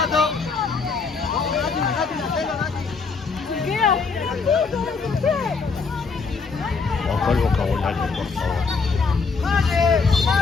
Bajo el vocabulario, por favor.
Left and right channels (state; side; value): quieter; right; 4.8 dB